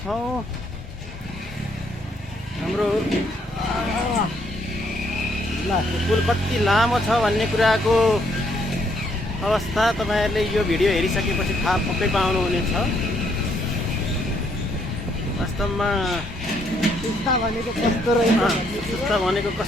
हाम्रो पुल कति लामो छ भन्ने कुराको अवस्था तपाईँहरूले यो भिडियो हेरिसकेपछि थाहा पक्कै पाउनुहुनेछ। वास्तवमा सुस्ता भनेको कस्तो रहेछ, सुस्ता भनेको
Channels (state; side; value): normal; both; correlation 0.71